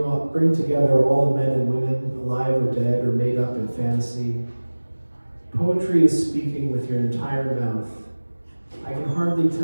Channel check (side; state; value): both; inverted; correlation -1.00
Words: together all the men and women, alive or dead or made up in fantasy. Poetry is speaking with your entire mouth. I can hardly